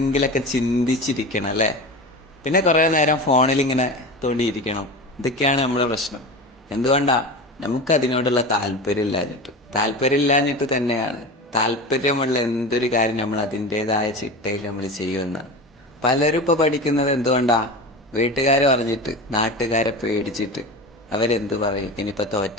ചിന്തിച്ചിരിക്കണം അല്ലേ? പിന്നെ കുറേ നേരം ഫോണിലിങ്ങനെ തോണ്ടിയിരിക്കണം. ഇതൊക്കെയാണ് നമ്മുടെ പ്രശ്നം. എന്തുകൊണ്ടാ? നമുക്കതിനോടുള്ള താല്പര്യമില്ലാഞ്ഞിട്ട് തന്നെയാണ്. താല്പര്യമുള്ള എന്തൊരു കാര്യം നമ്മൾ അതിൻ്റേതായ ചിട്ടയിൽ നമ്മൾ ചെയ്യുമെന്ന്. പലരും ഇപ്പോൾ പഠിക്കുന്നത് എന്തുകൊണ്ടാ? വീട്ടുകാർ പറഞ്ഞിട്ട്, നാട്ടുകാരെ പേടിച്ചിട്ട്. അവരെന്ത് പറയും? ഇനിയിപ്പോൾ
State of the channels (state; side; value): normal; both; correlation 0.28